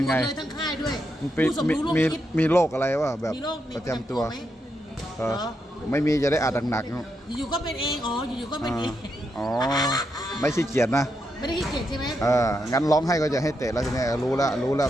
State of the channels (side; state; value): both; normal; correlation 0.82